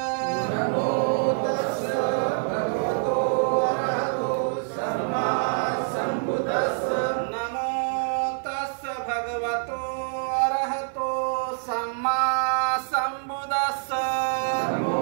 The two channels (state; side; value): silent; left; 61 dB below the other